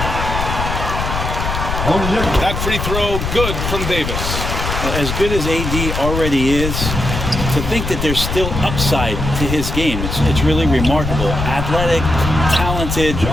That free throw good from Davis. As good as AD already is, to think that there's still upside to his game, it's really remarkable. Athletic, talented,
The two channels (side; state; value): left; noise; rumble, 3 dB below the sound